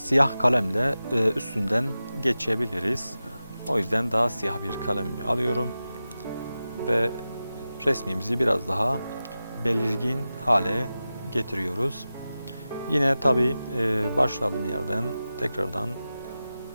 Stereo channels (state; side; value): inverted; both; correlation -0.94